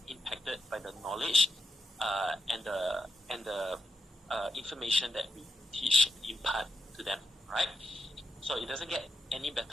impacted by the knowledge and the information that we teach, impart to them, right? So it doesn't get any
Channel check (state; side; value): normal; both; correlation 0.83